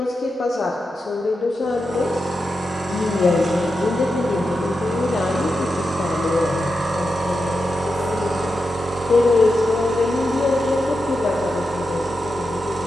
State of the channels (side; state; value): both; normal; correlation 0.88